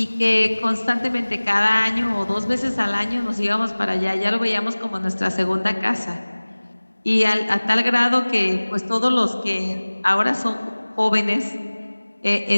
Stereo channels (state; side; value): inverted; both; correlation -1.00